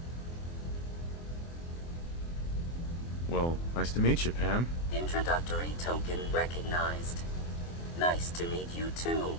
Well, nice to meet you, Pam. Introductory token recognized. Nice to meet you too,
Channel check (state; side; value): late; right; 24 ms